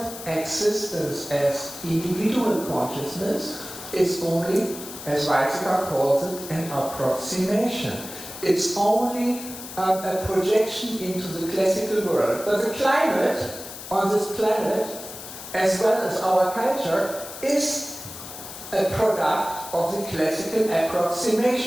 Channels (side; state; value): left; noise; hiss, 12 dB below the sound